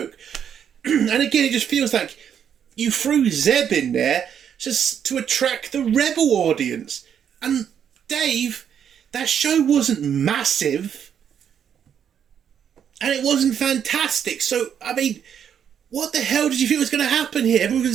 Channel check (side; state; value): left; quieter; 8.5 dB